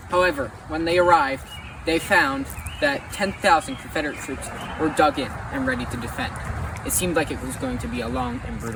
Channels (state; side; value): identical; both; correlation 1.00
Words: However, when they arrived, they found that 10,000 Confederate troops were dug in and ready to defend. It seemed like it was going to be a long and